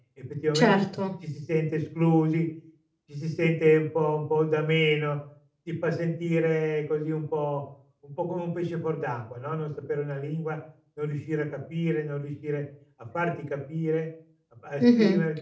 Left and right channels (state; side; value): identical; both; correlation 1.00